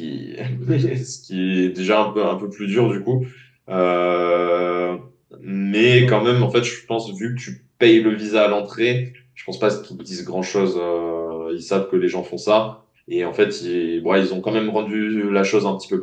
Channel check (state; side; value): identical; both; correlation 1.00